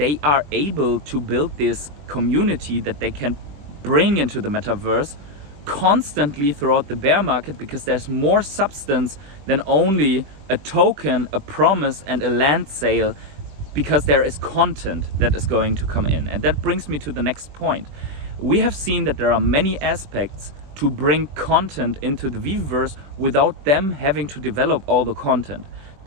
are able to build this community that they can bring into the metaverse constantly throughout the bear market, because there's more substance than only a token, a promise and a land sale, because there is content that is going to come in. And that brings me to the next point. We have seen that there are many aspects to bring content into the Veveverse without them having to develop all the content.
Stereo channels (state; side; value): late; left; 21 ms